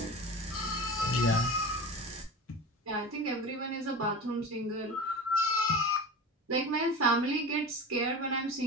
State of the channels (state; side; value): normal; both; correlation 0.31